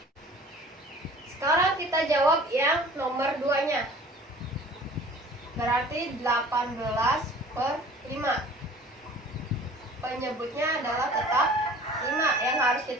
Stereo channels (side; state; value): both; normal; correlation 0.47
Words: Sekarang kita jawab yang nomor 2-nya. Berarti 18/5. Penyebutnya adalah tetap 5. Yang harus